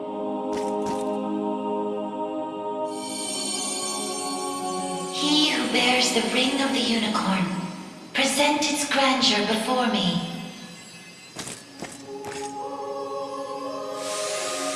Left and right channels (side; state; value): both; identical; correlation 1.00